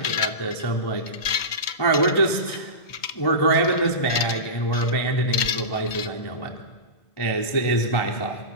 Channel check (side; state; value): right; late; 2.1 ms